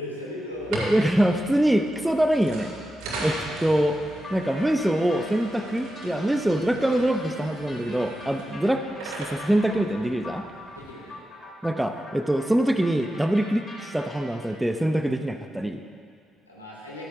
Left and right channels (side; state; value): both; normal; correlation 0.91